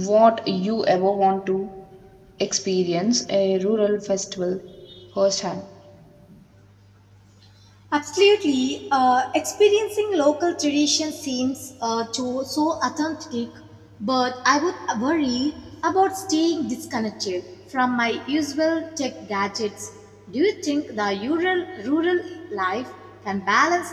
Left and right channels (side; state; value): both; identical; correlation 1.00